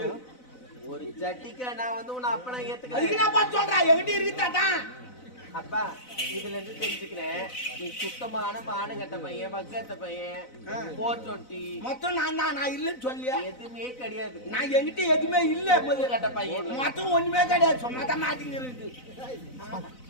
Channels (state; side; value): late; right; 4.0 ms